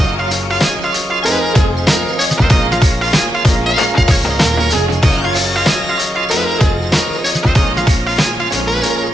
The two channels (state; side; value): normal; both; correlation 0.85